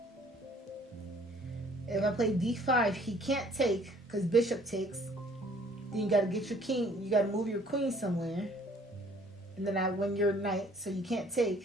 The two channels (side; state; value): both; normal; correlation 0.57